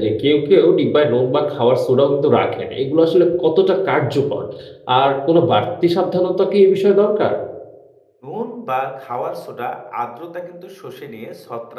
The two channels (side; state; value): both; identical; correlation 1.00